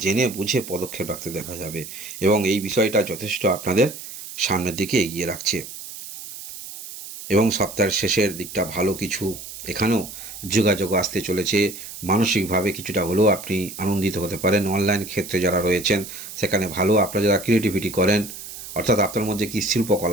জেনে বুঝে পদক্ষেপ রাখতে দেখা যাবে। এবং এই বিষয়টা যথেষ্ট আপনাদের সামনের দিকে এগিয়ে রাখছে। এবং সপ্তাহের শেষের দিকটা ভালো কিছু এখানেও যোগাযোগ আসতে চলেছে। মানসিকভাবে কিছুটা হলেও আপনি আনন্দিত হতে পারেন। অনলাইন ক্ষেত্রে যারা রয়েছেন সেখানে ভালো, আপনারা যারা ক্রিয়েটিভিটি করেন, অর্থাৎ আপনার মধ্যে কি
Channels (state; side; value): noise; right; hiss, 12 dB below the sound